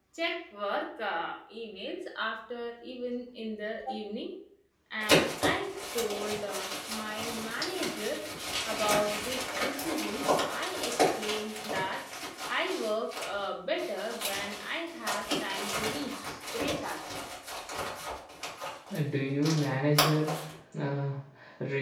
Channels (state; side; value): identical; both; correlation 1.00